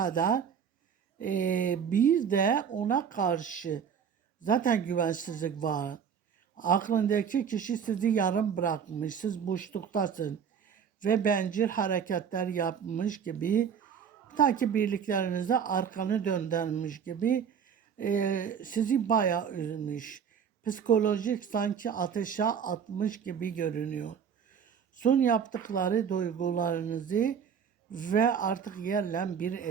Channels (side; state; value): left; quieter; 7.4 dB